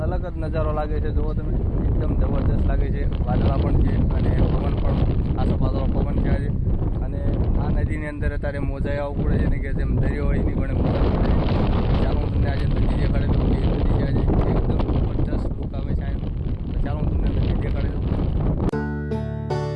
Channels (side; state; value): both; identical; correlation 1.00